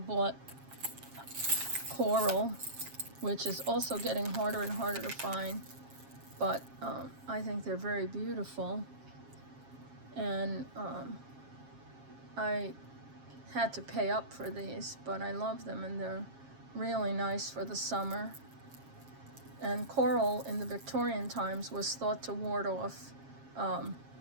coral, which is also getting harder and harder to find. But I think they're very beautiful. And I had to pay up for these, but I love them, and they're really nice for the summer. And coral in the Victorian times was thought to ward off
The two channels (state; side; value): late; left; 7.4 ms